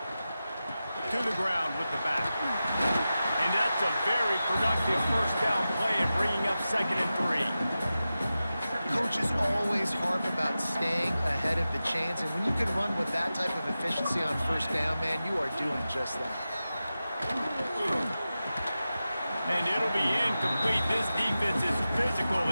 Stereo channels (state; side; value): inverted; both; correlation -0.93